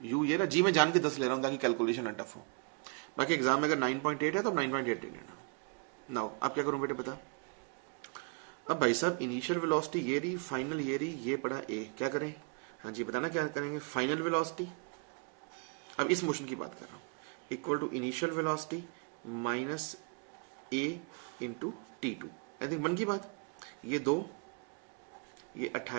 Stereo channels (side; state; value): left; quieter; 36.0 dB